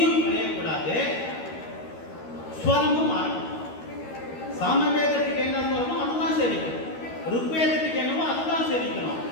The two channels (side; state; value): right; late; 13 ms